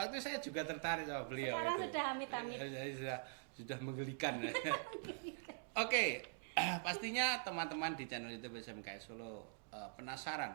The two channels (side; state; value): left; silent; digital silence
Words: saya juga tertarik sama beliau. Sekarang itu. sudah amit-amit. Sudah menggelikan. Oke, pastinya teman-teman di channel YouTube SMKI Solo